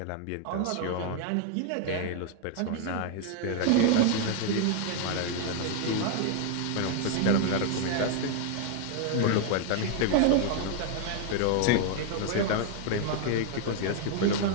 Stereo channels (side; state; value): both; different; correlation 0.00